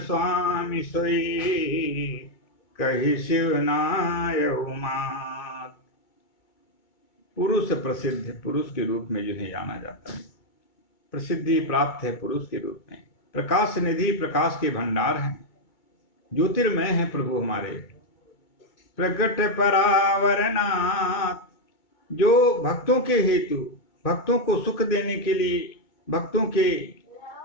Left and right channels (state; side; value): late; right; 2.2 ms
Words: सोई कही शिवनाय उमात। पुरुष प्रसिद्ध, पुरुष के रूप में जिन्हें जाना जाता है, प्रसिद्धि प्राप्त है पुरुष के रूप में। प्रकाश निधि, प्रकाश के भंडार हैं, ज्योतिर्मय है प्रभु हमारे। प्रगट परावरनाथ, जो भक्तों के हेतु, भक्तों को सुख देने के लिए, भक्तों के